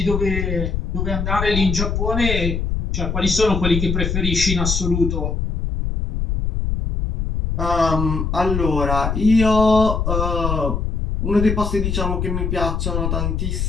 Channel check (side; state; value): left; noise; rumble, 1 dB below the sound